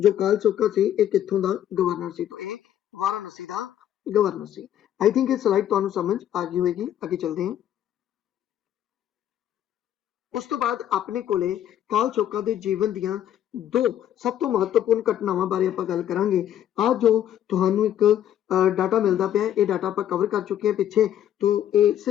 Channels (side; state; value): right; quieter; 10.9 dB